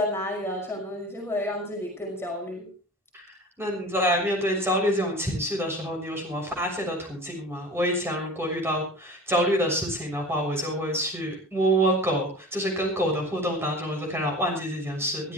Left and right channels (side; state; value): both; normal; correlation 0.38